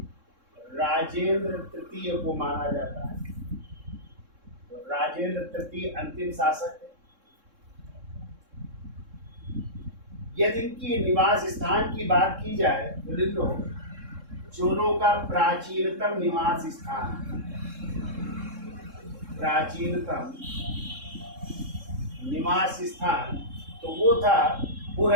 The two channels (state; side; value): late; left; 3.7 ms